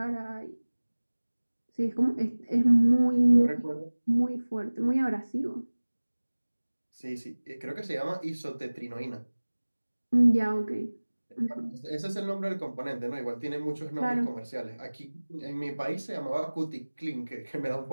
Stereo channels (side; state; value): both; inverted; correlation -1.00